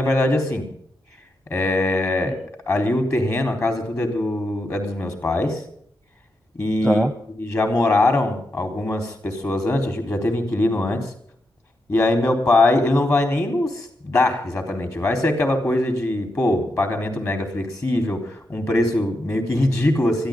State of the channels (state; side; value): normal; both; correlation 0.84